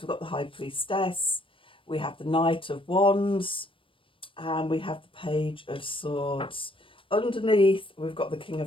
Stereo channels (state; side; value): late; right; 0.25 ms